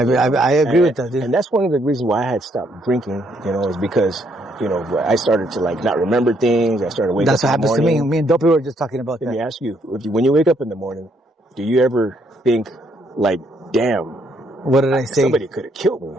agree with that, dude. And that's one of the reasons why I had stopped drinking, you know, is because, you know, I started to like not remember things. I started waking up in the morning. That's what happens to me. Me and Dopey were just talking about that. Let me ask you, when you wake up in the morning, do you ever think like, damn, what did I say? Somebody could have killed me.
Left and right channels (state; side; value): normal; both; correlation 0.71